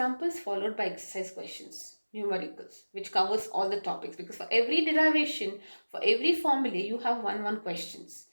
followed by exercise questions, numericals, which covers all the topics, because for every derivation, for every formula, you have one questions.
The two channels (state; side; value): inverted; both; correlation -1.00